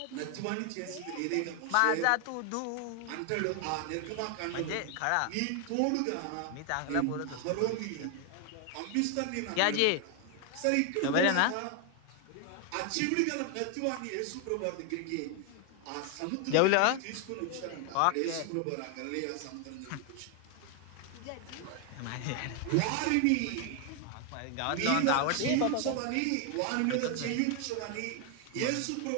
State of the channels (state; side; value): different; both; correlation 0.00